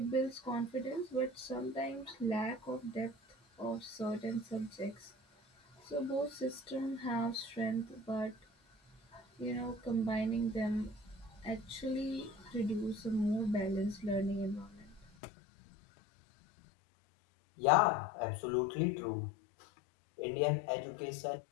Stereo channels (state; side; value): drops out; right; at 15.1 s